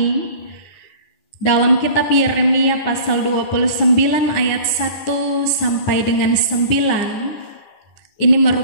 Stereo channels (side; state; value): right; late; 9.8 ms